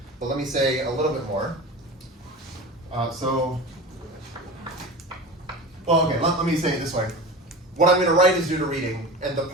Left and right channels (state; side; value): normal; both; correlation 0.32